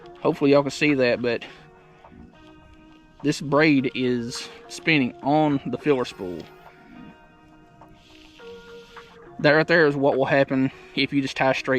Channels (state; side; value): identical; both; correlation 1.00